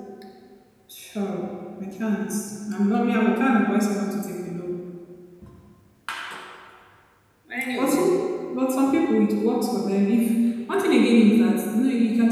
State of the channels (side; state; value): both; identical; correlation 1.00